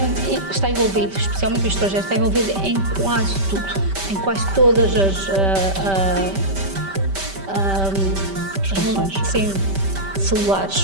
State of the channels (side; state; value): left; late; 5.1 ms